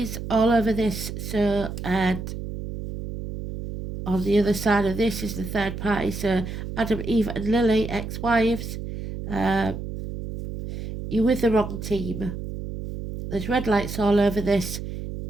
all over this. So, and on the other side of this is the third party. So Adam, Eve and Lily, ex-wives. You're with the wrong team. There's red lights all over this.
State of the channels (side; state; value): right; noise; hum, 7 dB below the sound